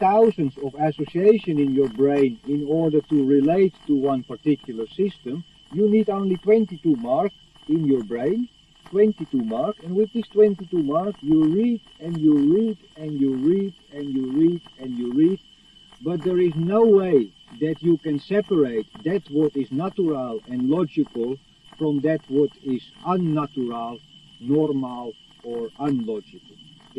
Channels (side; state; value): both; identical; correlation 1.00